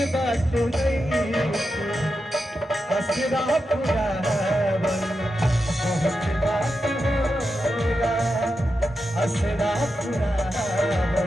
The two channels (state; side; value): normal; both; correlation 0.88